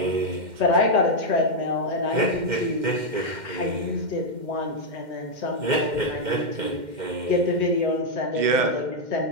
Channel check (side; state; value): left; late; 2.1 ms